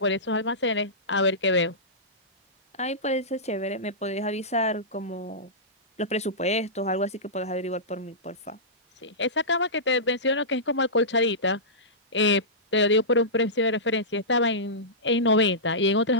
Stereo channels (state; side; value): normal; both; correlation -0.17